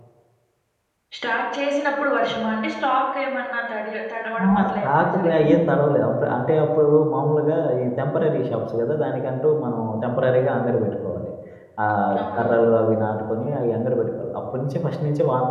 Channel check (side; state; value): both; identical; correlation 1.00